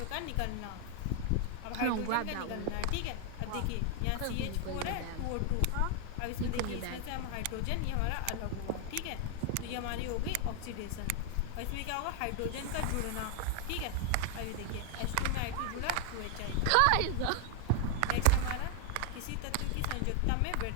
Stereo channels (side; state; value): both; different; correlation 0.00